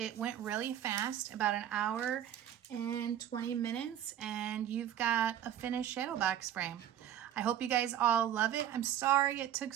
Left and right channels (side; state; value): left; quieter; 10.9 dB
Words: went really fast, about an hour and 20 minutes, and you've got a finished shadow box frame. I hope you guys all love it. I'm sorry it took